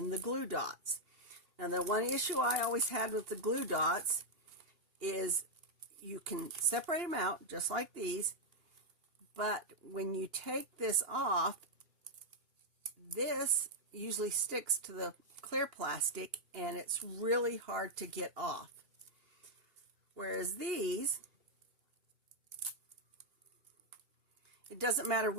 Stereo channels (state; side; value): late; left; 2.8 ms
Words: the glue dots. Now, the one issue I always had with the glue dots is you can separate them out just like these, but when you take this off, this usually sticks to the clear plastic and it's really hard to get off. Whereas these, it doesn't matter